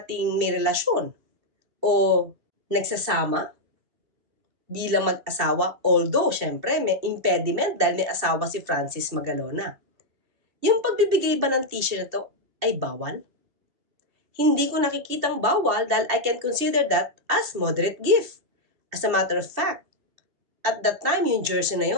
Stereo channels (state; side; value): late; left; 2.7 ms